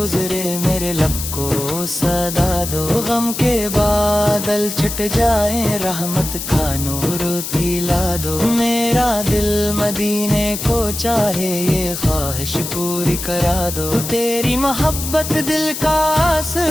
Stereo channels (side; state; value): left; noise; hiss, 6 dB below the sound